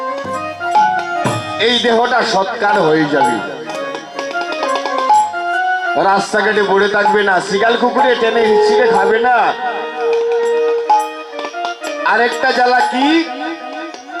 এই দেহটা সৎকার হয়ে যাবে, রাস্তাঘাটে পড়ে থাকবে না, শিগাল কুকুরে টেনে হিচড়ে খাবে না। আরেকটা জ্বালা কি?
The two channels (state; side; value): identical; both; correlation 1.00